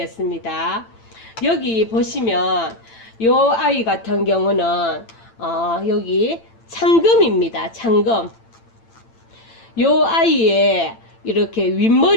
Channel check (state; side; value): late; right; 8.9 ms